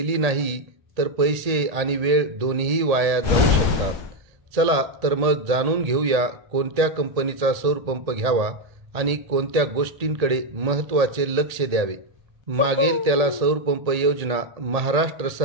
नाही तर पैसे आणि वेळ दोन्हीही वाया जाऊ शकतात। चला तर मग जाणून घेऊया कोणत्या कंपनीचा सौर पंप घ्यावा आणि कोणत्या गोष्टींकडे महत्त्वाचे लक्ष द्यावे। मागेल त्याला सौर पंप योजना महाराष्ट्र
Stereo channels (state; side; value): late; left; 1.8 ms